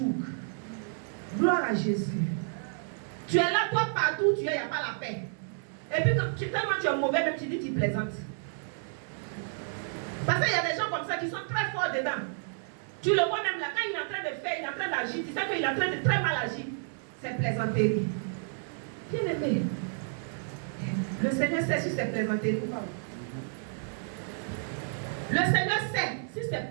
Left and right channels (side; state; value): left; silent; 57 dB below the other